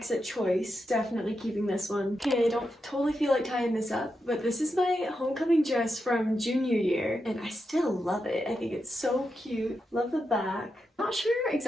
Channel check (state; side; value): normal; both; correlation 0.86